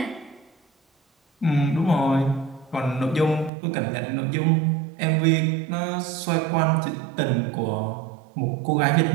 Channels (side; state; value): left; drops out; at 3.5 s